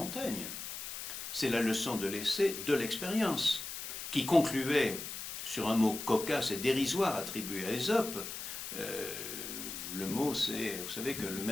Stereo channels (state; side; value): noise; left; hiss, 7 dB below the sound